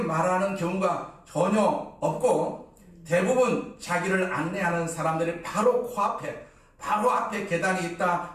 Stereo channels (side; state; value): both; identical; correlation 1.00